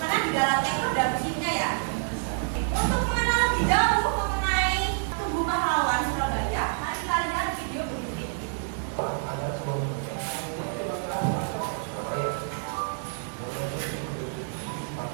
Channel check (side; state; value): left; silent; digital silence